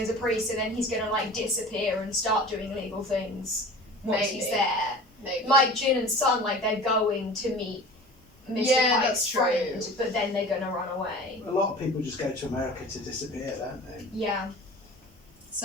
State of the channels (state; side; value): normal; both; correlation 0.39